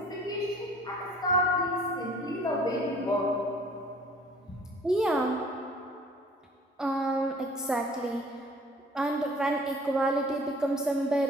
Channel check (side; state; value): both; normal; correlation 0.52